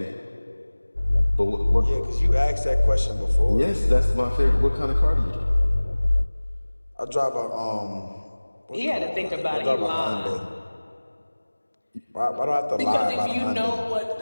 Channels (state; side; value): inverted; both; correlation -1.00